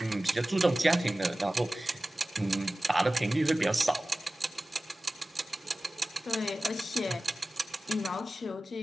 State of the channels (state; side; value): normal; both; correlation 0.96